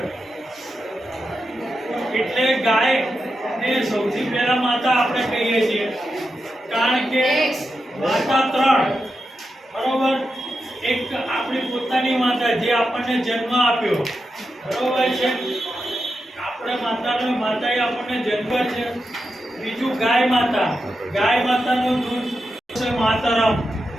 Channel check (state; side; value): normal; both; correlation 0.88